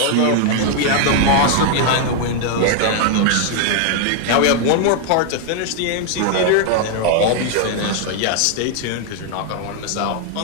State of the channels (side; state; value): both; different; correlation 0.00